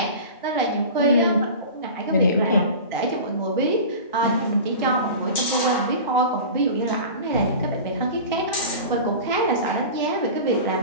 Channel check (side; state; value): both; inverted; correlation -0.34